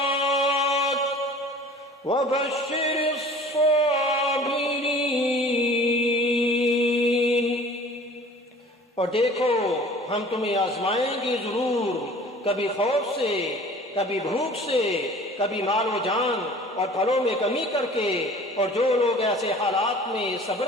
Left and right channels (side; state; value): both; normal; correlation 0.46